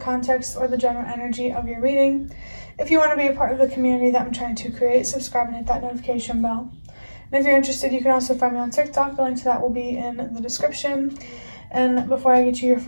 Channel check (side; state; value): both; inverted; correlation -1.00